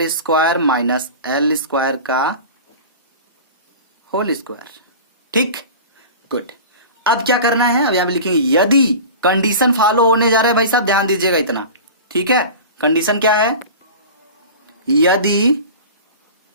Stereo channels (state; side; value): inverted; both; correlation -0.35